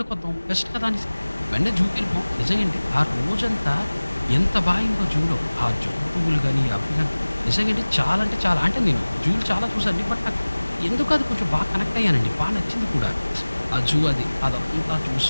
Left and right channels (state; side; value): inverted; both; correlation -1.00